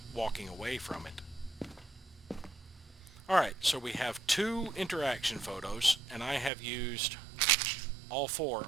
walking away from it. Alright, so we have 2 interaction photos, and I have used all 4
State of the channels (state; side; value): drops out; left; at 6.5 s